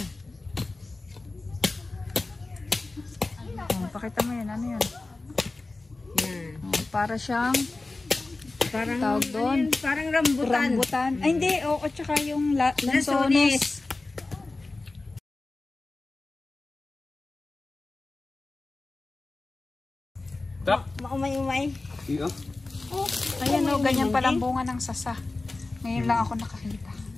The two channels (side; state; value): right; quieter; 3.3 dB